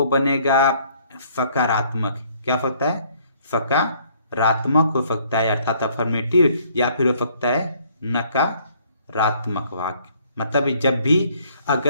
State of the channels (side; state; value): both; inverted; correlation -0.62